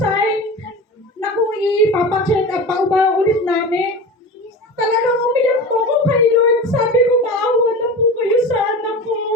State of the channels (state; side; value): normal; both; correlation 0.31